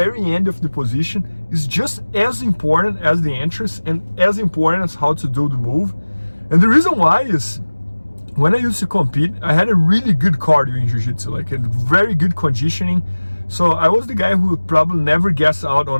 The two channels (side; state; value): both; inverted; correlation -1.00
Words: end of the position, is just as important as the entrance and as important as how to do the move. And the reason why is, when I used to compete, I had a really good cardio in jiu-jitsu, like a very good conditioning. So I was the guy who would probably never gas out